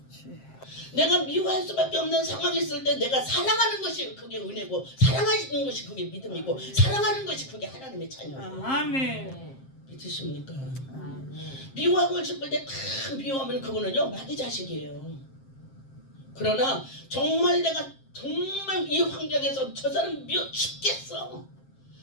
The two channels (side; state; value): right; late; 7.5 ms